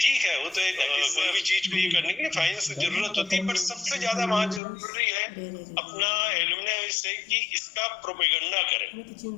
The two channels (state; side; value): drops out; right; at 4.6 s